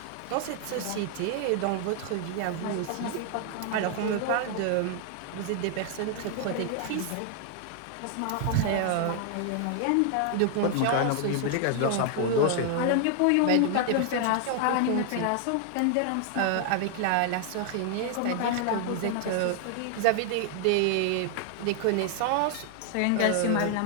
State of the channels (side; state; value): both; different; correlation 0.00